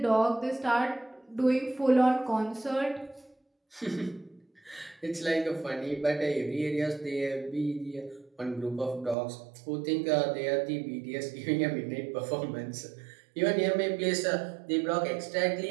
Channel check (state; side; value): drops out; left; at 9.2 s